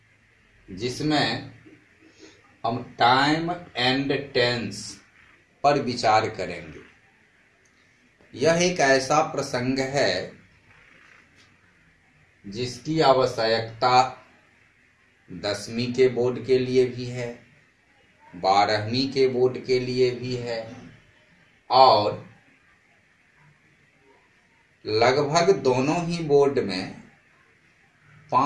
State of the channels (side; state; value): both; identical; correlation 1.00